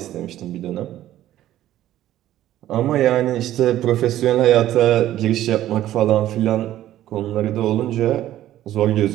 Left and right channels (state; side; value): quieter; left; 13.3 dB